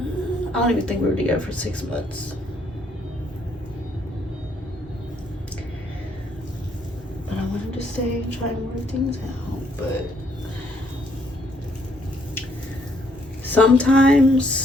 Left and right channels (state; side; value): normal; both; correlation 0.69